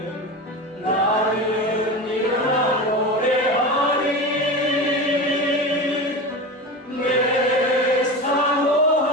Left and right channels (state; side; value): normal; both; correlation 0.26